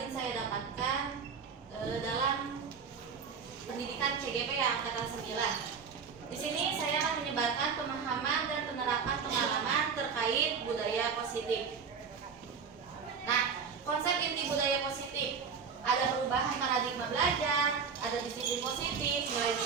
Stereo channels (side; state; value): left; quieter; 6.0 dB